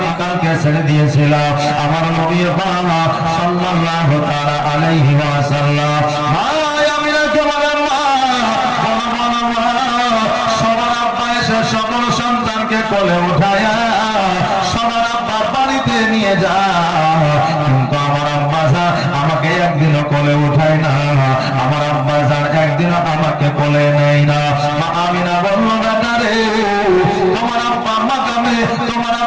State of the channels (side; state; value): both; identical; correlation 1.00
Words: ছেড়ে দিয়েছিলাম আমার নবী পাক সাল্লাল্লাহু তাআলা আলাইহি ওয়াসাল্লাম। সবার আব্বা এসে সকল সন্তানকে কোলে উঠায়া সবার আব্বা বাড়িতে নিয়ে যায়, কিন্তু আমার আব্বা আমাকে একদিনও কোলে উঠায় না, আমার আব্বা একদিনও আমাকে কোলে নেয় না। মা আমিনা বলল, বেটা রে, তোমার আব্বা মাকামে, তোমার